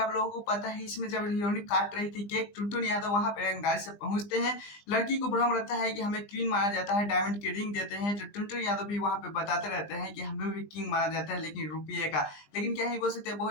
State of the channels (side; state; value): right; late; 20 ms